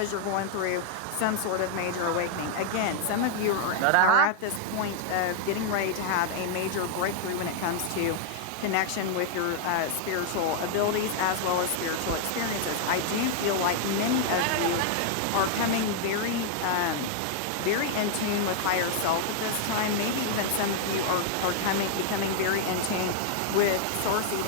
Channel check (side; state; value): both; different; correlation -0.01